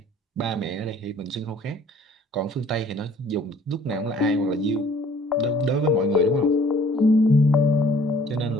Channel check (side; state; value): both; normal; correlation 0.55